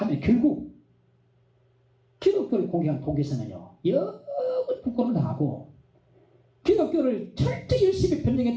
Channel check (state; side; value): identical; both; correlation 1.00